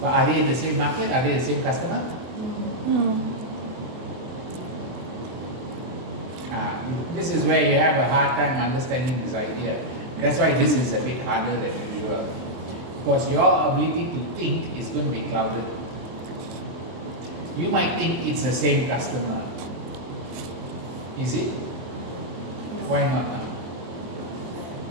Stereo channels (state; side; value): late; left; 23 ms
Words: are they in the same market? Are they the same customer? This is where you have a hard time understanding this idea. That's why this is a bit harder than usual. Because your ability to think is going to be clouded. You might think it's the same customer. Is it? Why not now?